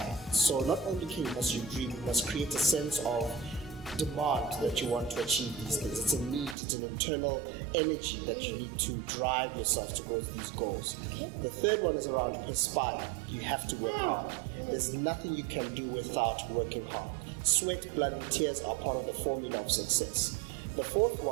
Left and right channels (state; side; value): drops out; left; at 6.6 s